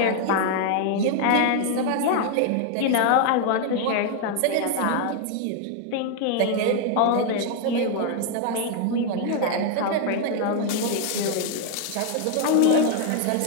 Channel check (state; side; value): different; both; correlation 0.00